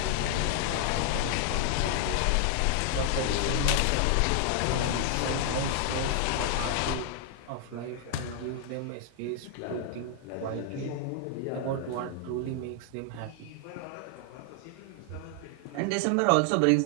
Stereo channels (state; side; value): different; both; correlation 0.00